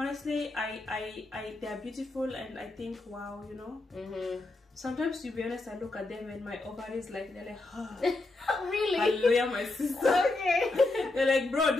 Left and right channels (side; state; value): right; quieter; 3.1 dB